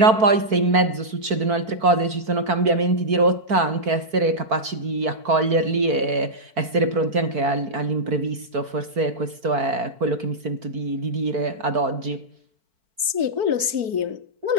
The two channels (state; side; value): late; left; 4.5 ms